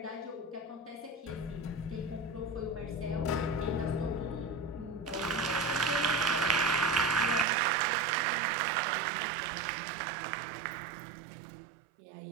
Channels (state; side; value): drops out; left; at 7.5 s